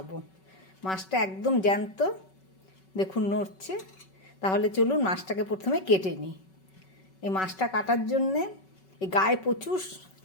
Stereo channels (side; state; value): right; late; 5.3 ms